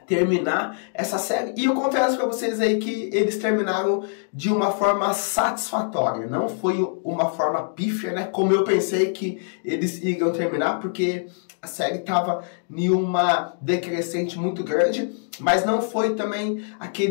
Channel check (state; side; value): silent; right; 63 dB below the other